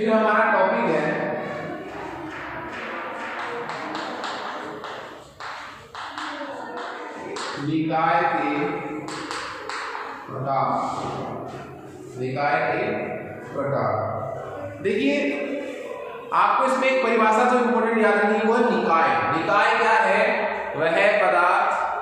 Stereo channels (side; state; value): both; identical; correlation 1.00